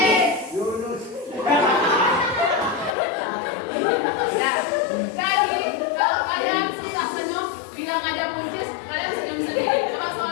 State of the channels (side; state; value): right; drops out; at 3.0 s